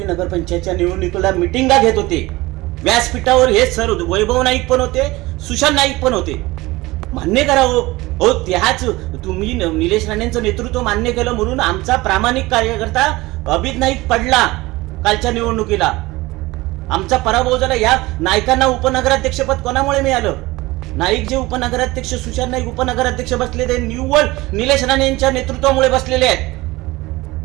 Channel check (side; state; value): left; quieter; 20.3 dB